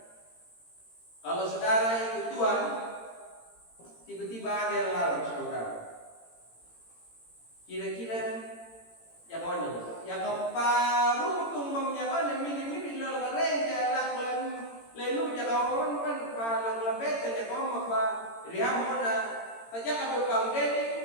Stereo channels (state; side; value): late; right; 18 ms